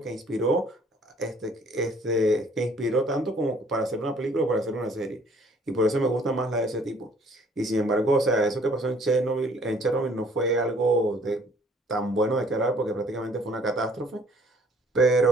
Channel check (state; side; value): normal; both; correlation 0.58